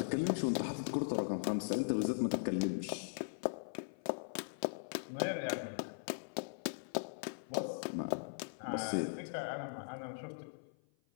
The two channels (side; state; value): right; silent; 51 dB below the other